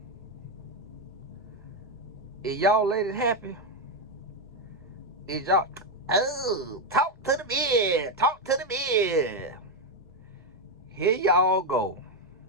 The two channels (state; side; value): normal; both; correlation 0.05